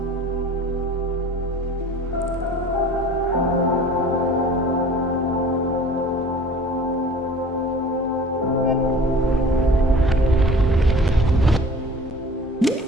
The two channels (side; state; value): both; normal; correlation 0.45